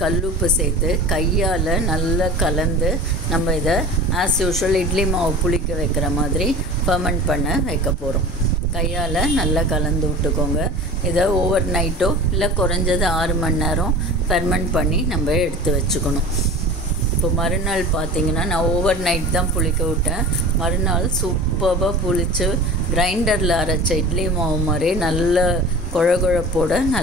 கல்லுப்பு சேர்த்து கையால் நல்லா கலந்து நம்ம இதை ஆஸ் யூஷுவல் இட்லி மாவு புளிக்க வைக்கிற மாதிரி ஃபர்மெண்ட் பண்ண வைக்க போகிறோம். கையால் நல்லா கலந்து விட்டுக்கோங்க. இதை ஓவர் நைட்டோ இல்லை குறைஞ்சது 6 மணி நேரம் ஃபெர்மெண்ட் பண்ணி நம்ம எடுத்து வச்சுக்கணும். இப்போ மறுநாள் பார்த்திங்கன்னா நான் ஓவர் நைட் தான் புளிக்க விட்டேன். மறுநாள் சூப்பராக புளித்து கிரைண்டரில் அரைச்ச இட்லி மாவு மாதிரி நல்ல குழப்போட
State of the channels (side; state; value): both; normal; correlation 0.37